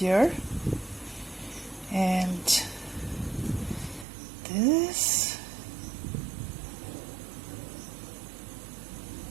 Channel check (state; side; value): drops out; left; at 4.0 s